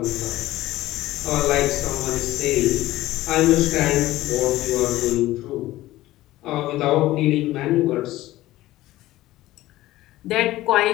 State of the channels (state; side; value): quieter; right; 16.3 dB